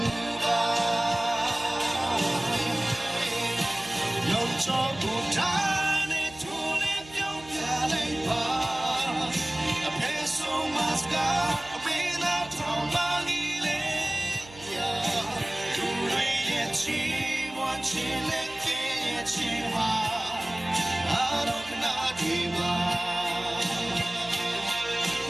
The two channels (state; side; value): noise; right; hum, 20 dB below the sound